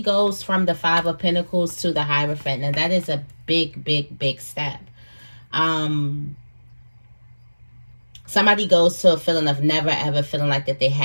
from the 5 of Pentacles to the Hierophant, and that is a big step. Somebody goes to a feeling of never ever feeling like that they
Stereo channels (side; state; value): both; inverted; correlation -1.00